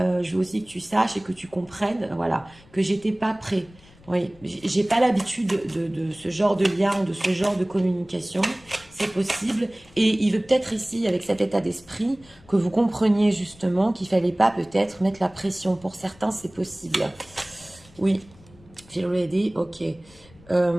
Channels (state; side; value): noise; left; rumble, 26 dB below the sound